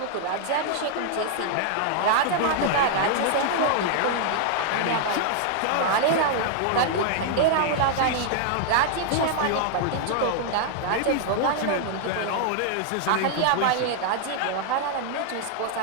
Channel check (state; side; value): different; both; correlation 0.00